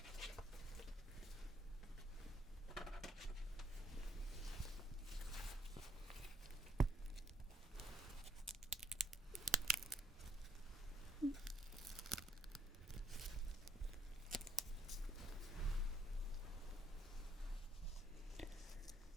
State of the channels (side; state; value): both; normal; correlation 0.68